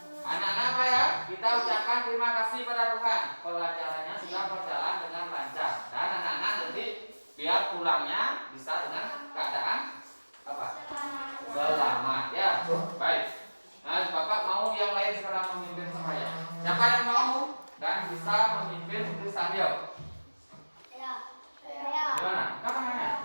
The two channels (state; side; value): inverted; both; correlation -1.00